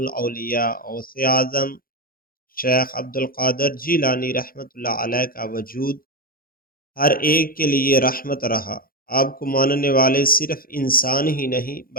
غوث اعظم شیخ عبد القادر جیلانی رحمۃ اللہ علیہ کا وجود ہر ایک کے لیے رحمت رہا۔ آپ کو ماننے والے صرف انسان ہی نہیں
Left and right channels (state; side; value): late; right; 0.42 ms